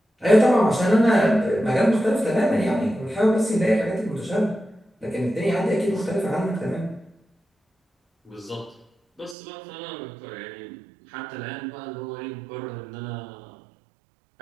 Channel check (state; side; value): drops out; left; at 9.3 s